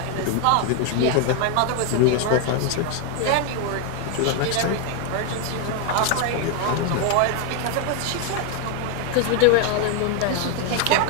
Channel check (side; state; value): both; different; correlation 0.01